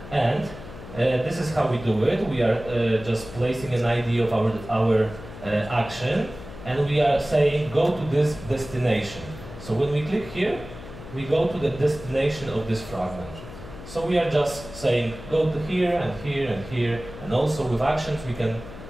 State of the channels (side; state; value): left; noise; hum, 14 dB below the sound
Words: And this is how we do it. We are just placing an ID of our action, and we are saying go to this destination. So when we click here, we go to the destination of this fragment. So we are just saying go to here and here and here, and also with actions we can